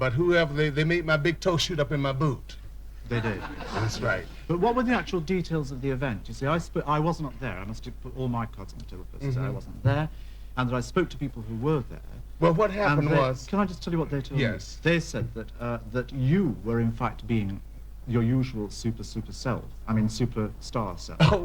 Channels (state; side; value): identical; both; correlation 1.00